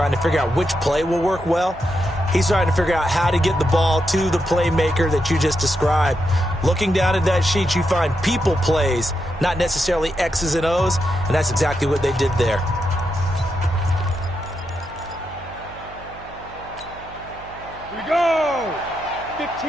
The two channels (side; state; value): right; noise; hum, 19 dB below the sound